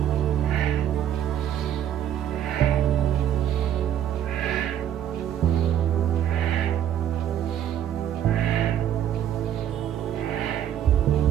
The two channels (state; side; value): quieter; left; 10.5 dB